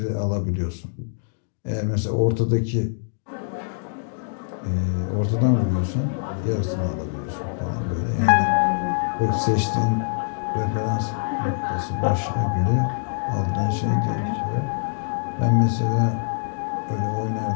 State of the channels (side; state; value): right; silent; digital silence